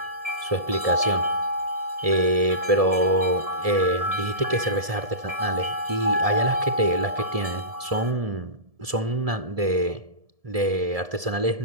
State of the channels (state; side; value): late; left; 1.7 ms